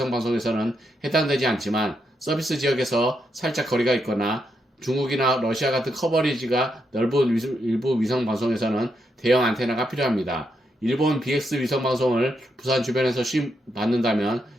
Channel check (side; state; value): both; normal; correlation 0.81